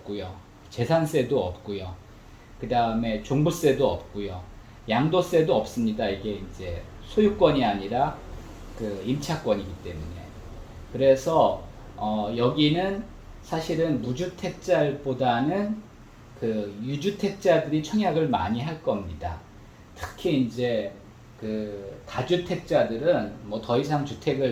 재산세도 없고요. 그 다음에 종부세도 없고요. 양도세도 없습니다. 이게 이제 소유권이 아니라 그 임차권이기 때문에. 그래서 여기는 사실은 무주택자보다는 그 유주택자들이 청약을 많이 할 겁니다. 특히 이제 그 다주택자들은 뭐 더 이상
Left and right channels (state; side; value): identical; both; correlation 1.00